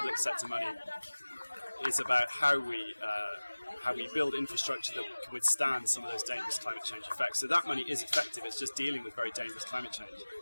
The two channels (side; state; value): both; inverted; correlation -1.00